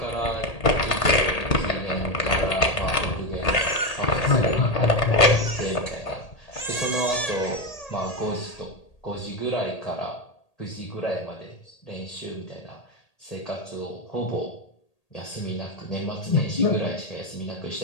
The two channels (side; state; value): right; late; 1.8 ms